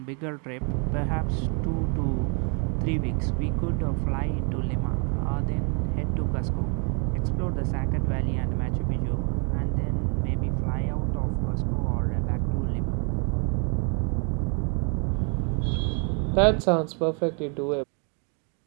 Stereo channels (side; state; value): left; quieter; 37.2 dB